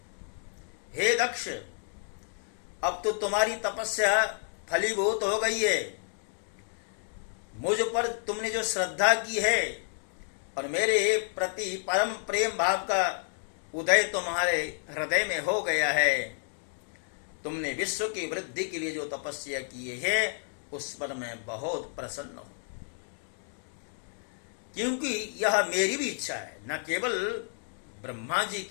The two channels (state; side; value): silent; right; digital silence